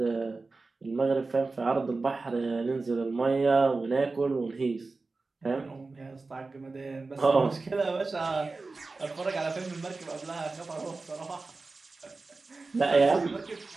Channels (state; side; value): quieter; left; 3.7 dB